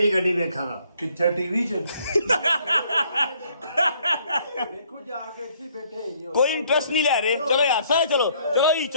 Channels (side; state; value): both; inverted; correlation -0.64